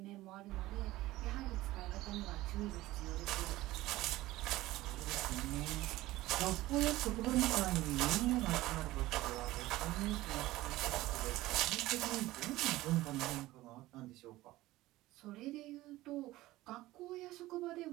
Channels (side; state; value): left; quieter; 17.4 dB